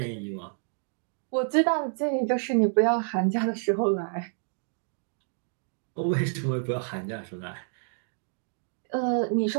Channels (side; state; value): left; silent; digital silence